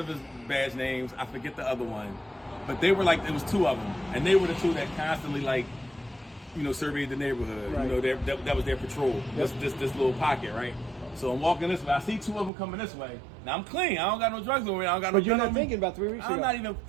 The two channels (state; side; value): drops out; left; at 12.5 s